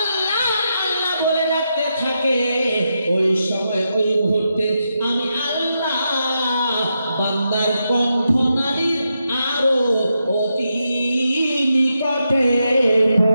আল্লাহ বলে রাখতে থাকে, ওই সময় ওই মুহূর্তে আমি আল্লাহ বান্দার কণ্ঠনালীর আরো অতি নিকটে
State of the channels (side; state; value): both; inverted; correlation -0.85